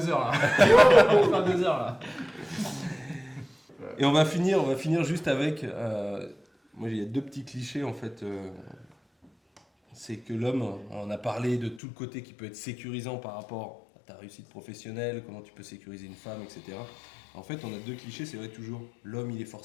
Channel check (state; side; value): drops out; right; at 11.8 s